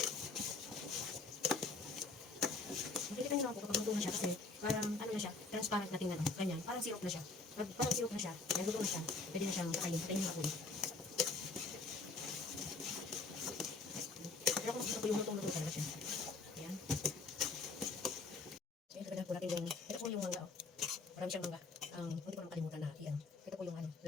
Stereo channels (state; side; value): quieter; right; 3.7 dB